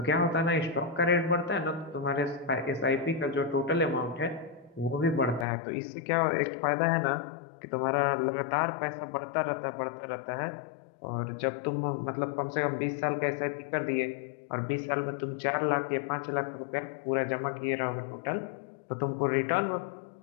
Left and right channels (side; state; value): right; drops out; at 5.5 s